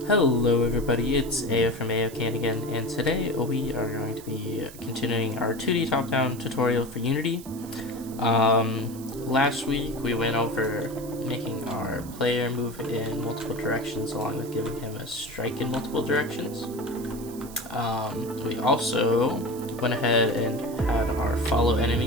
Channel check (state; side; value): noise; right; hiss, 17 dB below the sound